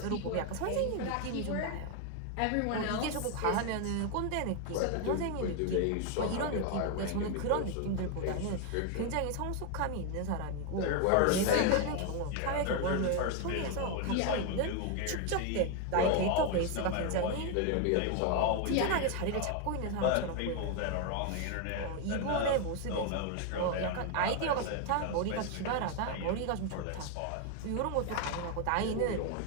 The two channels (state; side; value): different; both; correlation 0.01